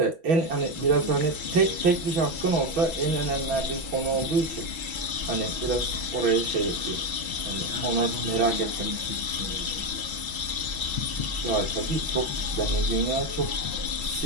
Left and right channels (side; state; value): left; late; 6.1 ms